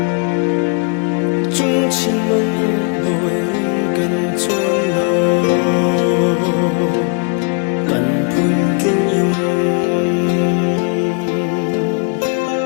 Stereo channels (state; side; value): quieter; right; 36.3 dB